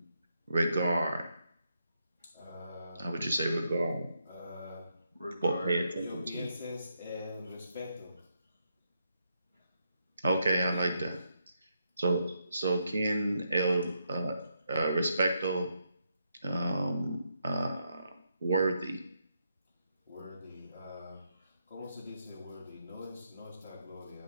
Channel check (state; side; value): inverted; both; correlation -0.80